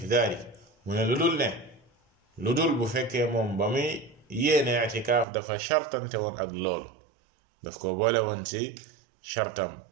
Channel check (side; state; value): left; drops out; at 5.2 s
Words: dhalik mu ne lu dul bu fekkee moom ba muy yéene i'tikaaf dafa shartante woon ak loolu daf ko boole woon ci shartam